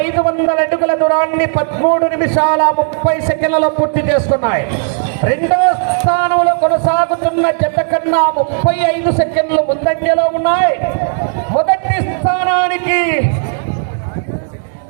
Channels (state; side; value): silent; left; digital silence